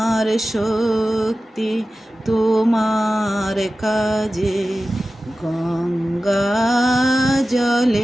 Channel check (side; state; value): both; normal; correlation 0.95